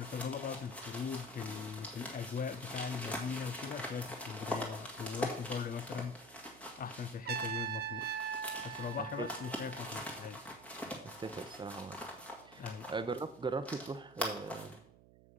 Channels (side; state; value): right; noise; hum, 22 dB below the sound